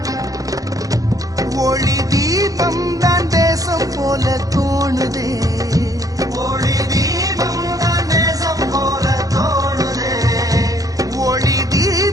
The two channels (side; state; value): left; late; 0.17 ms